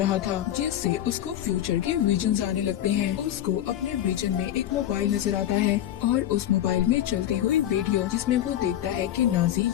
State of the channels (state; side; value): quieter; right; 11.9 dB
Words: था, जिससे उसको फ्यूचर के विजन्स आने लगते हैं। उसको अपने विजन में एक मोबाइल नजर आता है और उस मोबाइल में चलती हुई वीडियो, जिसमें वो देखता है कि नाजी